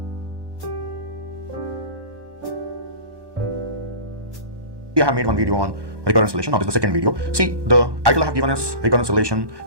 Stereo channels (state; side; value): late; left; 1.2 ms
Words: have made one video on recurrence relation. Now this is the second video. See, the title I have given is recurrence relation